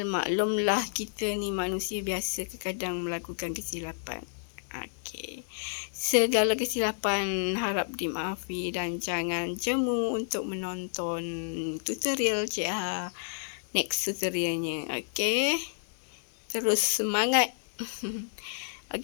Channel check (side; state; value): right; silent; digital silence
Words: kita ni manusia biasa kadang melakukan kesilapan. Okey. Segala kesilapan harap dimaafi dan jangan jemu untuk menonton tutorial Cik next tutorialnya. Okey. Terus semangat.